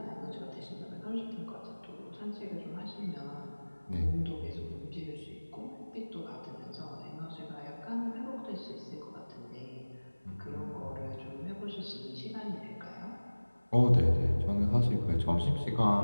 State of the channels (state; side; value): inverted; both; correlation -1.00